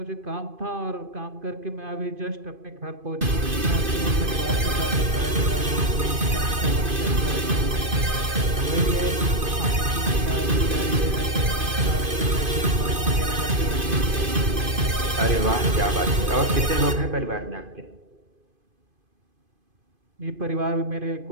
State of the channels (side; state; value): left; late; 2.5 ms